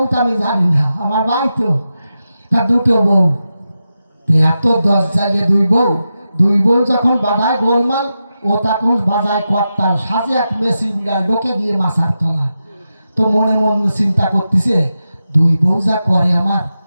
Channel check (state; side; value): inverted; both; correlation -0.90